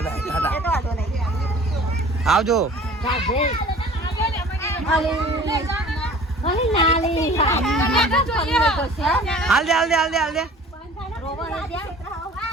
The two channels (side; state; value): both; normal; correlation 0.47